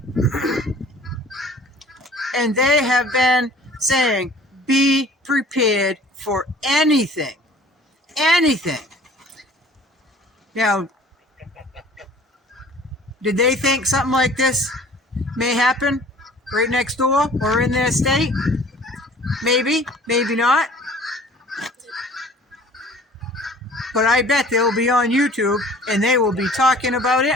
and they have been saying, be prepared for anything. Anything. Now, did they think something like this may happen right next door or in their state? Maybe, maybe not. But I bet they'll be on YouTube and they will be talking about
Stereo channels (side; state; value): both; normal; correlation 0.49